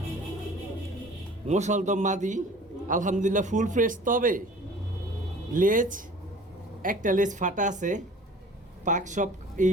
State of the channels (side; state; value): both; normal; correlation 0.47